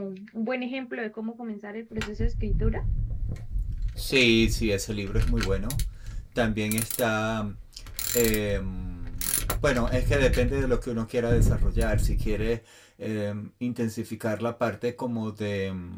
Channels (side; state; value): both; identical; correlation 1.00